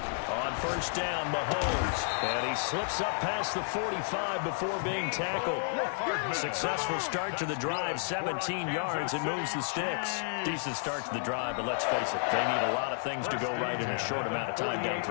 On 1st down, Mahomes. And he slips up past the 45 before being tackled. Successful start to the drive, 17 yards, and moves the sticks. Decent start to the drive, but let's face it, they need a lot of things to go right in a short amount of time, down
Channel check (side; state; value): right; silent; digital silence